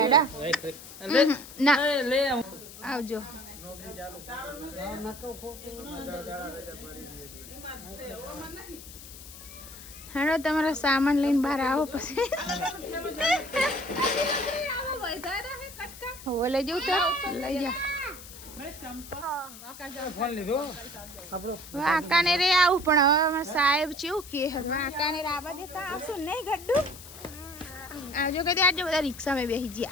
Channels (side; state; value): left; noise; hiss, 16 dB below the sound